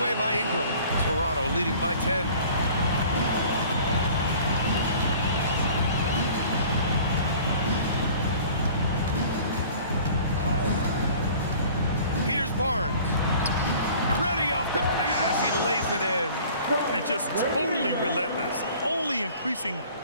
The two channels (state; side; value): inverted; both; correlation -0.48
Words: by Ingram. Toronto leading by 10. Here's Barnes. Ready off the pass. He lays it in. And just totally relentless. Only increasing